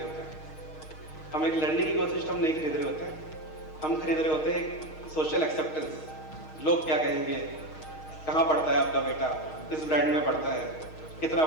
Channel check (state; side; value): late; right; 6.4 ms